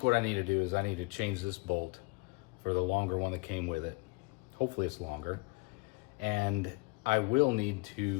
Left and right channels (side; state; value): right; quieter; 26.6 dB